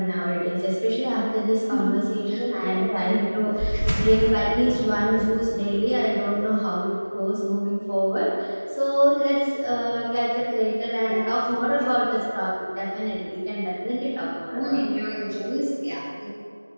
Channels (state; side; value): inverted; both; correlation -1.00